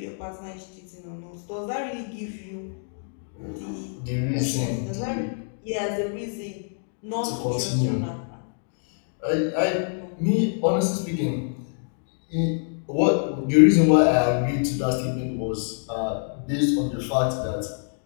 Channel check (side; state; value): right; silent; digital silence